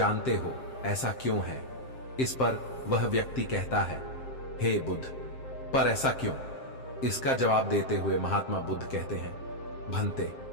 हो ऐसा क्यों है? इस पर वह व्यक्ति कहता है, हे बुद्ध, पर ऐसा क्यों? इसका जवाब देते हुए महात्मा बुद्ध कहते हैं, भंते,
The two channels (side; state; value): right; late; 7.6 ms